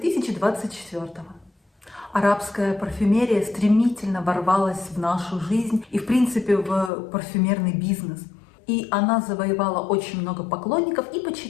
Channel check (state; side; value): drops out; right; at 6.9 s